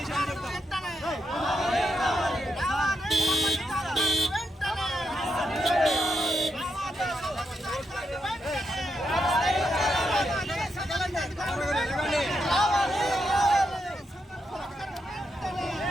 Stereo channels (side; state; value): both; normal; correlation 0.82